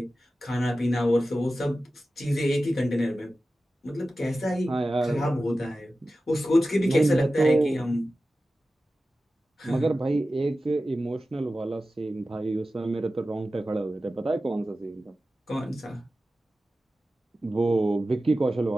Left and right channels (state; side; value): normal; both; correlation 0.94